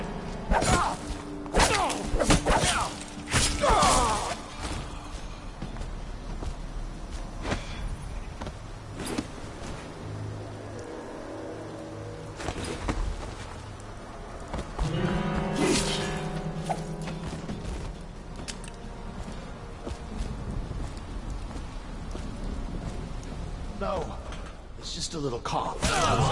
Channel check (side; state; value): both; identical; correlation 1.00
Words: No, it's just a little cough.